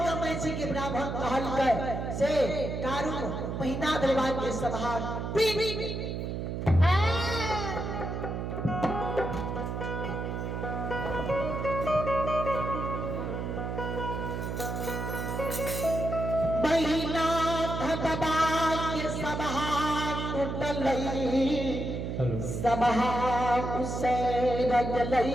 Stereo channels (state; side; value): noise; right; hum, 4 dB below the sound